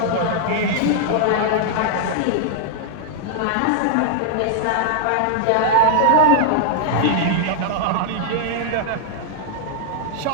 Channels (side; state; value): both; different; correlation -0.01